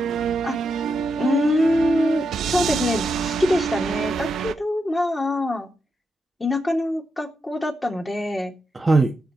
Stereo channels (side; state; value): both; normal; correlation 0.85